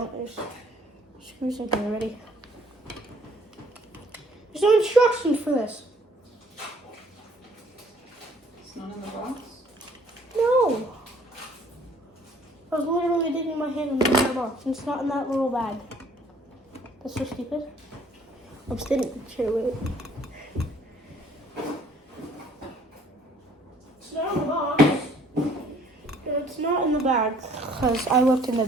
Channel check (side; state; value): both; normal; correlation 0.59